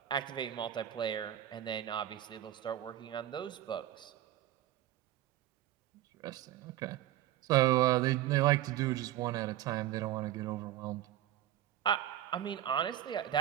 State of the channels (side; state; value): left; quieter; 12.8 dB